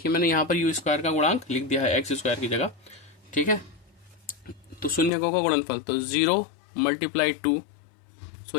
मैंने यहाँ पर u स्क्वायर का गुणांक लिख दिया है x स्क्वायर की जगह, ठीक है। तो शून्य को का गुणनफल, तो 0 मल्टीप्लाई 2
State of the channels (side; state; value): right; drops out; at 5.1 s